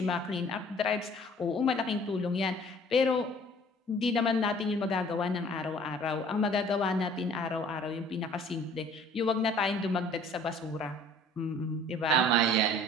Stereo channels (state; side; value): normal; both; correlation 0.52